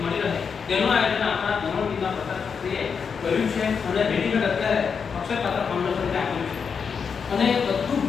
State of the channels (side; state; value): right; quieter; 6.2 dB